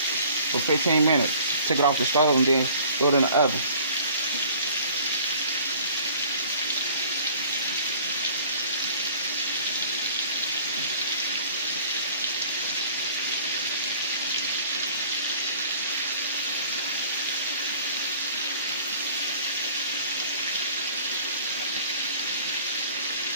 15 minutes. Took it off the stove and then threw it in the oven.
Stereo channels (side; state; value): both; inverted; correlation -0.50